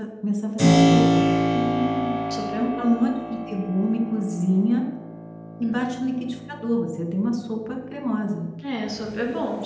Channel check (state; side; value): identical; both; correlation 1.00